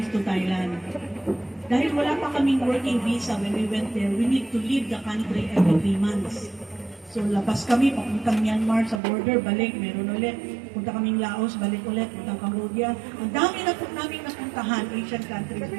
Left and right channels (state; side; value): drops out; left; at 9.0 s